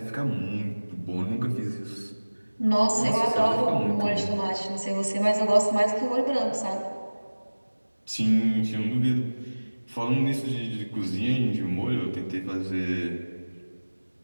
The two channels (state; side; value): inverted; both; correlation -1.00